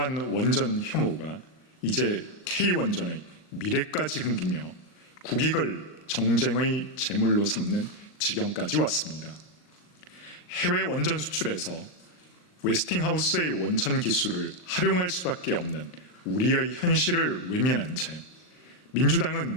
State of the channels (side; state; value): right; late; 39 ms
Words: 원전 혐오가 이제 K원전의 미래까지 흔들며 국익을 정쟁의 제물로 삼는 지경까지 왔습니다. 해외 원전 수출에서 웨스팅하우스의 원천 기술을 활용할 수밖에 없는 우리의 현실을 외면한 채